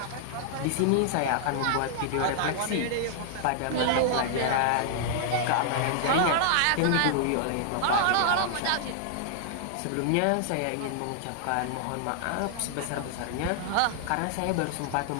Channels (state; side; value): different; both; correlation -0.01